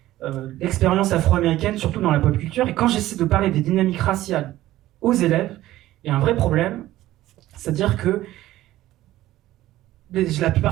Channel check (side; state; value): left; quieter; 15.2 dB